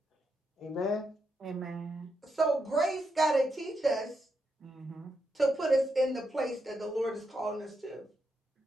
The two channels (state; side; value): normal; both; correlation 0.83